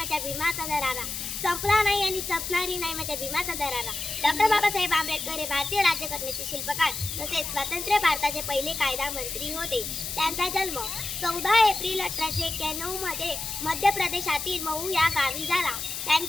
भीमाचा दरारा, संपला नाही आणि संपणारी नाही माझ्या भीमाचा दरारा. डॉक्टर बाबासाहेब आंबेडकर हे भारतीय राज्यघटनेचे शिल्पकार तसेच स्वतंत्र भारताचे पहिले कायदा मंत्री होते. त्यांचा जन्म 14 एप्रिल 1891 मध्ये मध्य प्रदेशातील महू या गावी झाला.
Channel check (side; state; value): left; noise; hiss, 5 dB below the sound